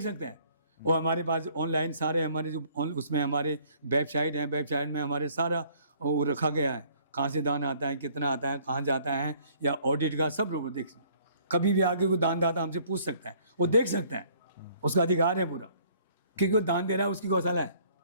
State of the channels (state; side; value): inverted; both; correlation -0.60